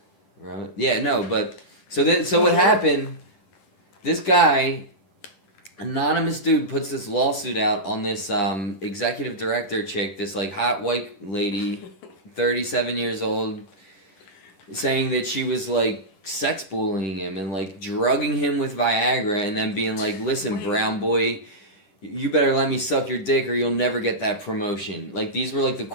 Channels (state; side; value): late; right; 10 ms